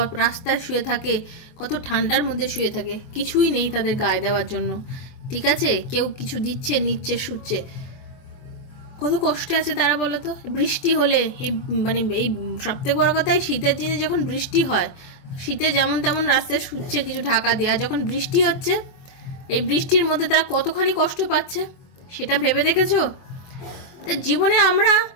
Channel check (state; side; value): late; right; 24 ms